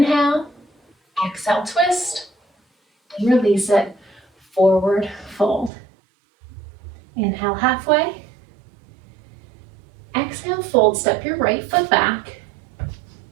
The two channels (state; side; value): drops out; left; at 5.7 s